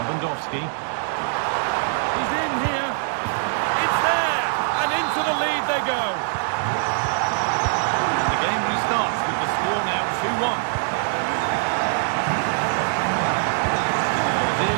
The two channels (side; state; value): left; silent; digital silence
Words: Lewandowski. He's in here. It's there! And into the lead they go. And the game restarts with the score now 2-1.